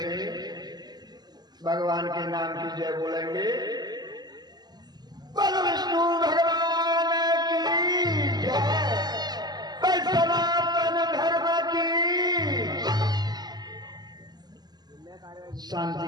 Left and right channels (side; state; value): left; late; 0.20 ms